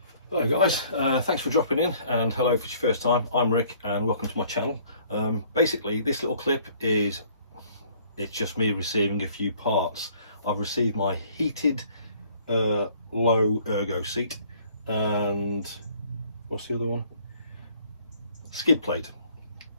Hello guys, thanks for dropping in, and hello if it's your first time. I'm Rick and welcome to my channel. Basically this little clip is, it's just me receiving a few parts. I've received my heated low ergo seat and what's the other one? Skid plate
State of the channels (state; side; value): inverted; both; correlation -0.57